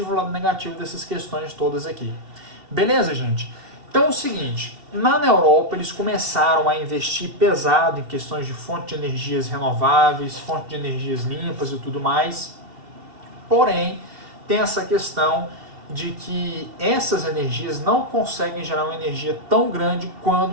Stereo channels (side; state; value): left; late; 2.7 ms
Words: e o lado negativo dessas questões todas aqui. Beleza, gente? Então é o seguinte, na Europa eles começaram a investir pesado em questões de fonte de energias renováveis, fonte de energias limpas e tudo mais. Porém, tem essa questão de que essas energias não conseguem gerar uma energia tão grande